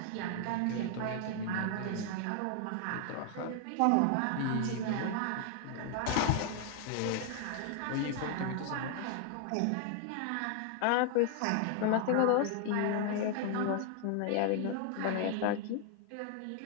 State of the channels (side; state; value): both; different; correlation 0.00